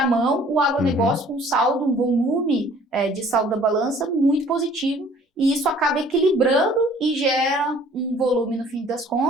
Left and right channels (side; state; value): both; normal; correlation 0.54